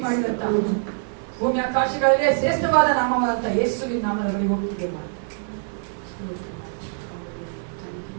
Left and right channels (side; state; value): left; silent; 63 dB below the other